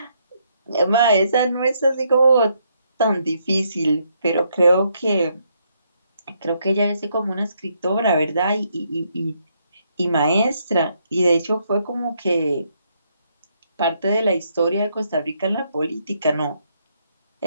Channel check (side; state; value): both; inverted; correlation -0.74